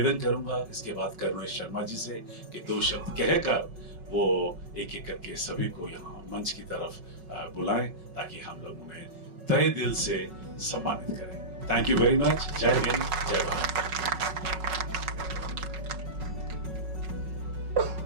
करूंगा इसके बाद करुणेश शर्मा जी से कि 2 शब्द कहकर वो एक एक करके सभी को यहाँ मंच की तरफ बुलाएं ताकि हम लोग उन्हें तहे दिल से सम्मानित करें। Thank you very much. जय हिंद, जय भारत।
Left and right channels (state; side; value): late; left; 5.4 ms